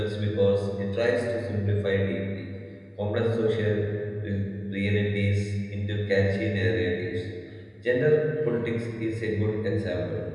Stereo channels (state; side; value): identical; both; correlation 1.00